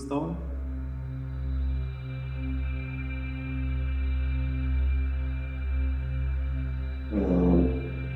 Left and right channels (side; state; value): both; identical; correlation 1.00